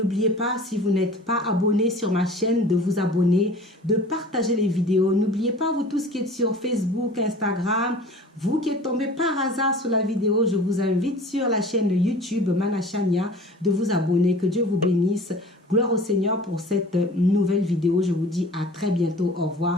pas, si vous n'êtes pas abonné sur ma chaîne, de vous abonner, de partager les vidéos. N'oubliez pas, vous tous qui êtes sur Facebook, Instagram, vous qui êtes tombé par hasard sur la vidéo, je vous invite sur la chaîne YouTube Mana Chania de vous abonner. Que Dieu vous bénisse. Gloire au Seigneur pour cette nouvelle vidéo. Je vous dis à très bientôt. Au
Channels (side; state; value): both; normal; correlation 0.43